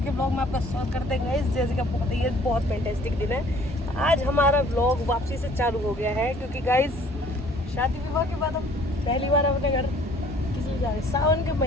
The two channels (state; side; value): normal; both; correlation 0.56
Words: व्लॉग में आपका स्वागत करते हैं गाइस। जैसे कि आपको पता ही है बहुत फैंटास्टिक दिन है। आज हमारा व्लॉग वापसी से चालू हो गया है क्योंकि गाइस शादी विवाह के बाद हम पहली बार अपने घर किसी जा रहे हैं। सावन के